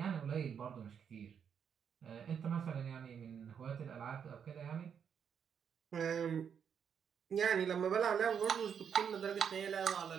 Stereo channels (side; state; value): left; quieter; 7.6 dB